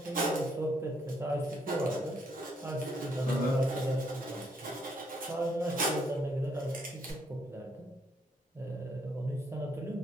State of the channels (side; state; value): both; normal; correlation 0.72